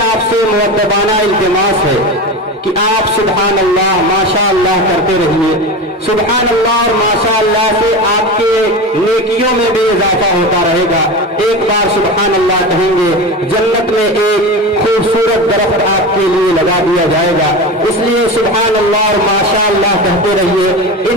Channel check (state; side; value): normal; both; correlation 0.26